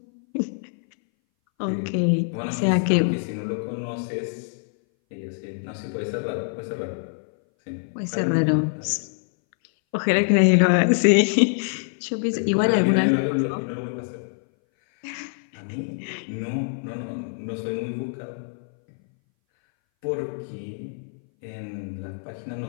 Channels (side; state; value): right; silent; 60 dB below the other